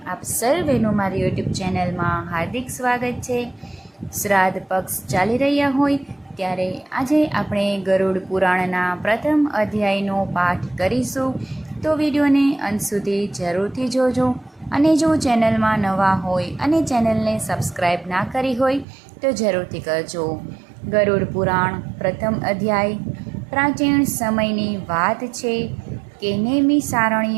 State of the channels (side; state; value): left; drops out; at 18.9 s